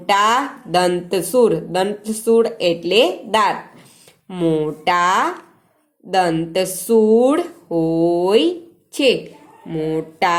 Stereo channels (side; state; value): both; identical; correlation 1.00